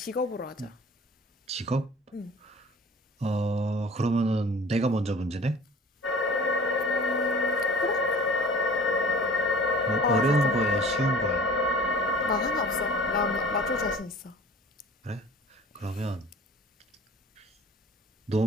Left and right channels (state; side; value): normal; both; correlation 0.44